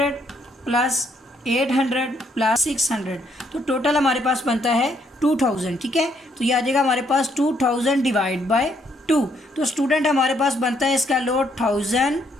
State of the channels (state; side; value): normal; both; correlation 0.70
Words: प्लस 800 प्लस 600, तो टोटल हमारे पास बनता है 2000, ठीक है। तो ये आ जाएगा हमारे पास 2000 डिवाइड बाय 2। तो स्टूडेंट हमारे पास बनता है इसका लोड 1000,